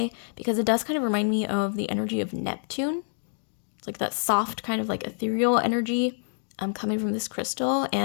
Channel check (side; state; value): right; silent; digital silence